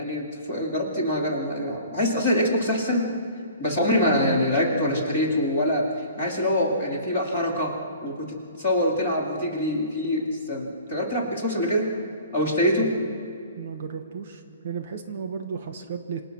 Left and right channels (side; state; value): both; inverted; correlation -0.44